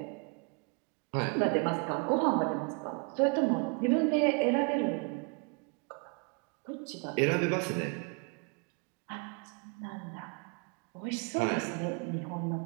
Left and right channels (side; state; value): left; quieter; 33.7 dB